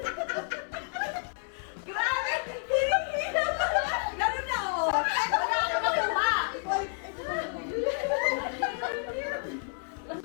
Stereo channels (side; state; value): right; silent; 58 dB below the other